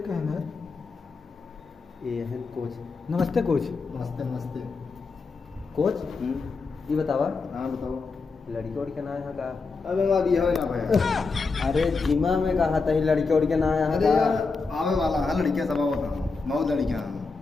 है ना ये है कोच। नमस्ते कोच। नमस्ते नमस्ते। कोच ये बतावा हाँ बताओ। लड़की और के ना यहाँ का। अबे वहाँ दिया है ना भाई। अरे जिमा में कहा था ही लड़की और के ना यहाँ अरे का। यार आवे वाला है लड़कियाँ सब होता हूँ बहुत लड़कियाँ हैं।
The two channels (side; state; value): right; quieter; 4.3 dB